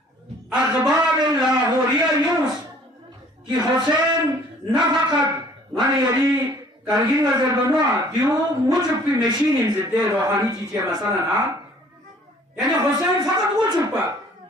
اخبار لاہوریہ یوز کہ حسین نہ فقط من یلی کرگین نظر بنوا دیو مجھب کی مشین انزدے روحانی چیزیں مثلا نا یعنی حسین فقط وہ چھپا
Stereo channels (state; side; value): normal; both; correlation 0.55